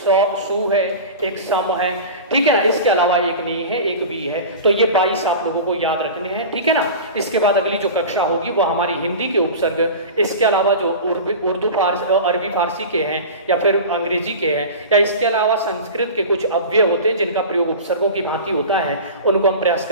है, एक सम है, ठीक है ना। इसके अलावा एक नी है, एक वी है। तो ये 22 आप लोगों को याद रखने हैं, ठीक है ना। इसके बाद अगली जो कक्षा होगी वो हमारी हिंदी के उपसर्ग, इसके अलावा जो उर्दू फारसी अरबी फारसी के हैं या फिर अंग्रेजी के हैं, या इसके अलावा संस्कृत के कुछ अव्यय होते हैं जिनका प्रयोग उपसर्गों की भांति होता है, उनको हम प्रयास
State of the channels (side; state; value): both; inverted; correlation -0.32